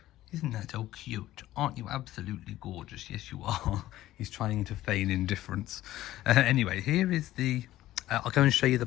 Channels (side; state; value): right; quieter; 14.9 dB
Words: Isn't that so cute? Aren't you absolutely gorgeous? Yes, you are. He's trying to feign indifference. Anyway, here is the... I'll go and show you the